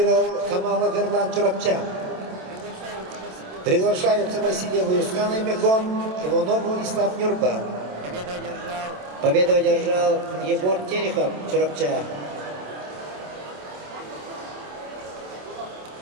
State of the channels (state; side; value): late; left; 27 ms